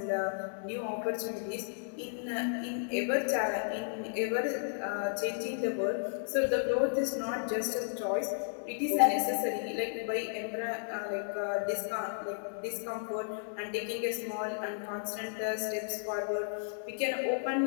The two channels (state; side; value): silent; right; digital silence